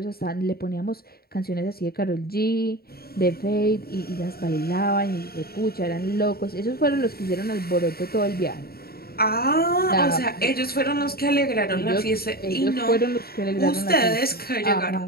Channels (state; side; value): late; right; 0.45 ms